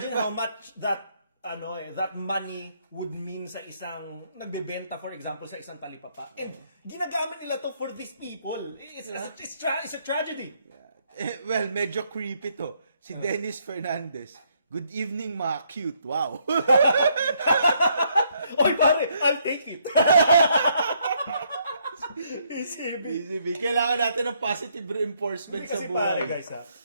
how much that money would mean sa isang nagbebenta, for example, sa isang talipapa? And ginagamit nila to for these people. It's a tragedy. Well, medyo creepy to. Si Dennis Fernandez. Good evening, mga cute. Wow. Oy, pare, I'll take it. ECB. BCB, kailangan natin ng positive reinforcement sa Kasi pare, buhay. guys,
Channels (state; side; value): inverted; both; correlation -0.71